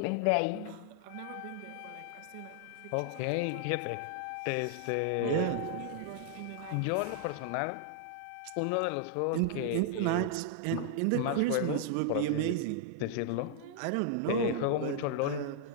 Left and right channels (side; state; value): both; different; correlation 0.00